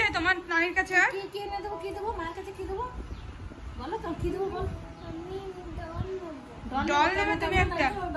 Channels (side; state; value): both; identical; correlation 1.00